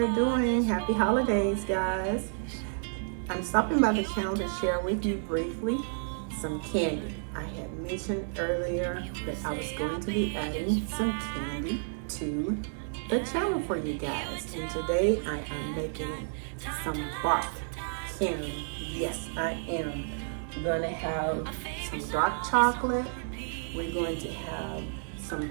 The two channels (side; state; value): left; silent; digital silence